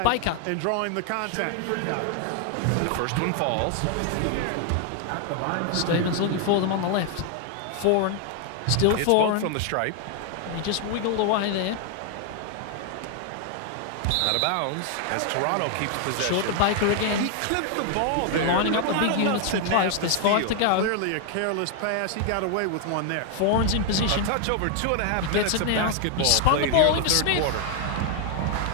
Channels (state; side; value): different; both; correlation 0.00